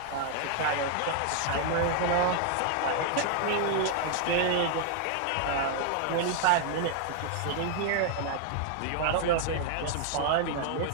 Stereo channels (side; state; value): both; different; correlation 0.00